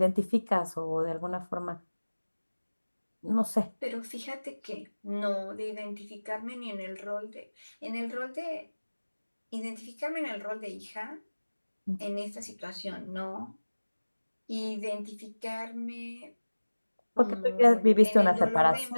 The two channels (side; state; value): both; inverted; correlation -1.00